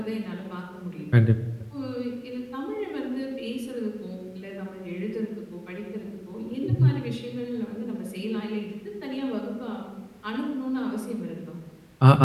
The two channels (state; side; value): identical; both; correlation 1.00